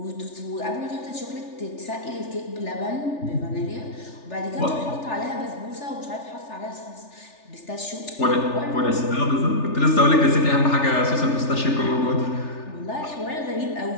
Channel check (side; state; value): right; late; 3.4 ms